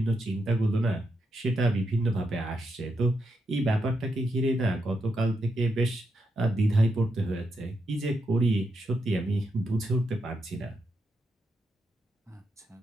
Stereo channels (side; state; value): both; normal; correlation 0.82